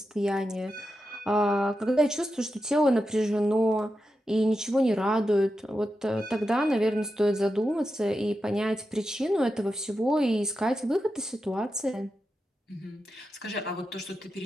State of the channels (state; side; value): normal; both; correlation 0.89